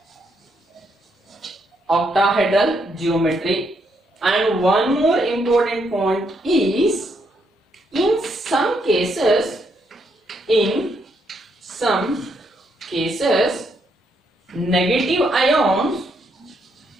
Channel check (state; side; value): normal; both; correlation 0.76